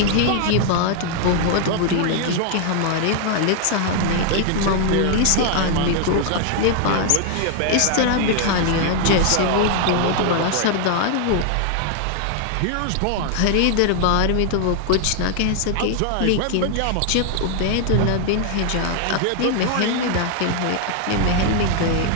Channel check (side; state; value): both; different; correlation 0.00